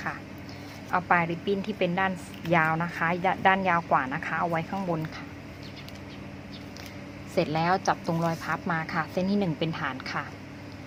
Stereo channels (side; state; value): both; identical; correlation 1.00